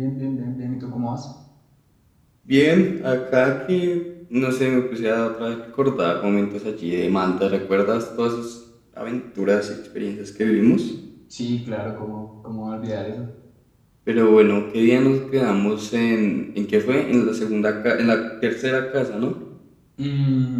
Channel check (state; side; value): identical; both; correlation 1.00